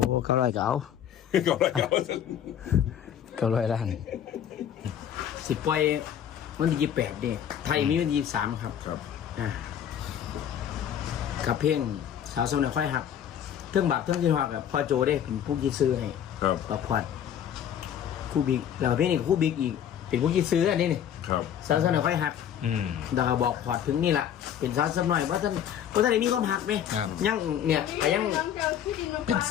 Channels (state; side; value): quieter; right; 9.6 dB